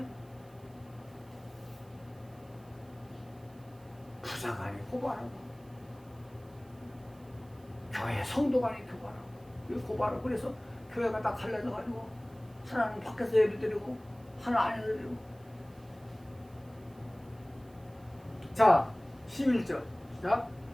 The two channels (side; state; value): right; noise; hiss, 29 dB below the sound